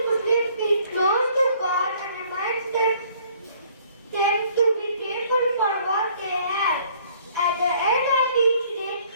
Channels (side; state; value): both; inverted; correlation -0.59